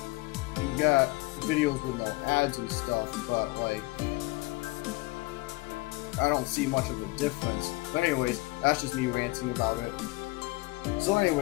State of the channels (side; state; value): right; quieter; 22.9 dB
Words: got videos with no ads and stuff, but like, I don't see much of a difference. But anyways, that's just me ranting about it. So